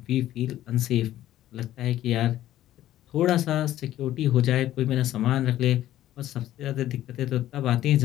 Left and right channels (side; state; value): right; quieter; 13.4 dB